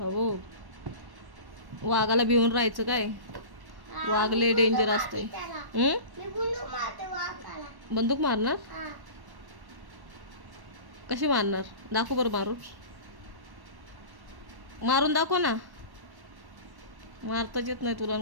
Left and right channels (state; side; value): late; left; 1.1 ms